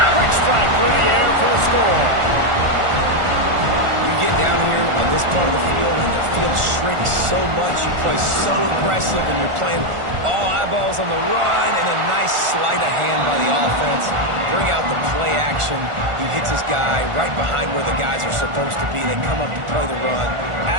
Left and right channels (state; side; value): late; left; 1.4 ms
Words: Quick strike through the air for the score. You get down here on this part of the field, and the field shrinks so much. You play so aggressive, and you're playing all eyeballs on the run, and a nice sleight of hand by the offense. Bring out the play action. He hits his guy right behind where the guys are supposed to be. They come up to play the run,